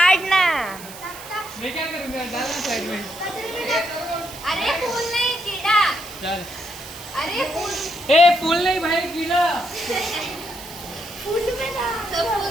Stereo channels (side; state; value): right; noise; hiss, 15 dB below the sound